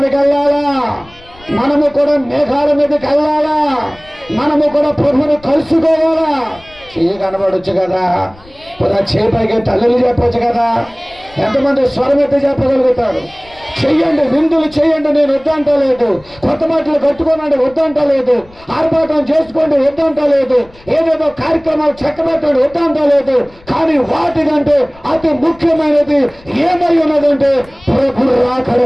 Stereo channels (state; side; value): noise; left; rumble, 25 dB below the sound